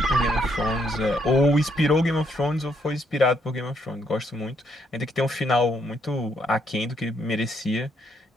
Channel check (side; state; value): both; normal; correlation 0.73